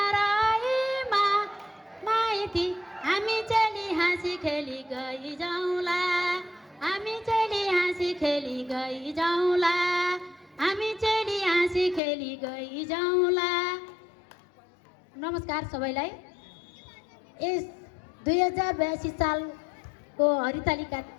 माइती हामी चली हाँसी खेली गई जाउँला हामी चली हाँसी खेली गई जाउँला हामी चली हाँसी खेली गई जाउँला। नमस्कार सबैलाई। यस 2082 सालको हरितालिका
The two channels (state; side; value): drops out; right; at 12.0 s